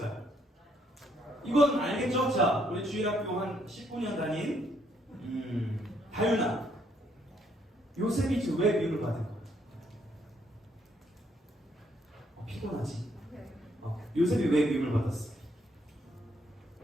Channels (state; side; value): normal; both; correlation 0.71